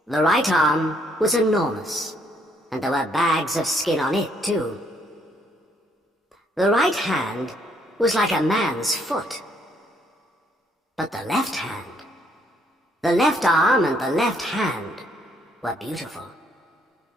The right arm was enormous, and there were bags of skin on it too. The right hand was like a man's foot. But the left hand, the left arm and the left hand were beautiful.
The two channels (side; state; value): both; normal; correlation 0.69